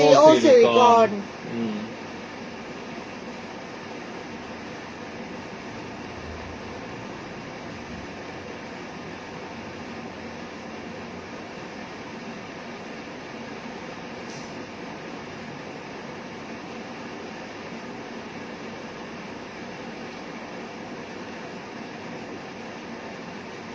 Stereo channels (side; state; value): both; identical; correlation 1.00